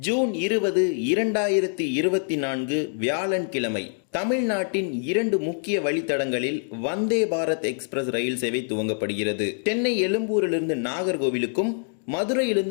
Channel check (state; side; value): silent; right; 61 dB below the other